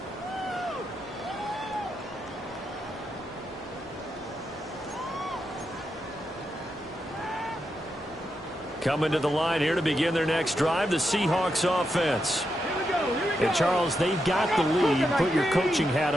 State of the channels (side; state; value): both; normal; correlation 0.85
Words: Coming to the line here to begin their next drive, the Seahawks offense. And Charles, they've got the lead. Put your coaching hat